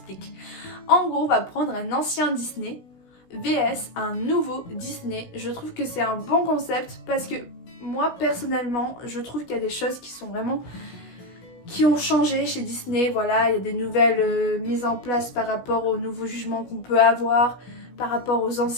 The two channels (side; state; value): right; late; 16 ms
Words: En gros, on va prendre un ancien Disney vs un nouveau Disney. Je trouve que c'est un bon concept parce que moi, personnellement, je trouve qu'il y a des choses qui ont changé chez Disney. Voilà, il y a des nouvelles mises en place par rapport aux nouveaux jugements qu'on peut avoir, par rapport aux